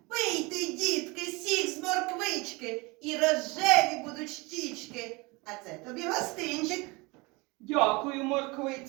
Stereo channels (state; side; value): quieter; left; 25.5 dB